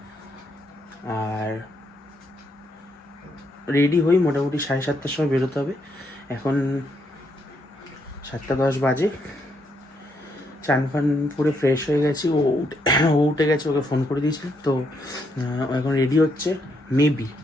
আর রেডি হই, মোটামুটি 7:30টার সময় বেরোতে হবে। এখন 7:10 বাজে। চান ফান পুরো ফ্রেশ হয়ে গেছি। ও উঠে গেছে, ওকে ফোন করে দিয়েছি। তো এখন রেডি হচ্ছে, মেবি,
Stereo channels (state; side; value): normal; both; correlation 0.76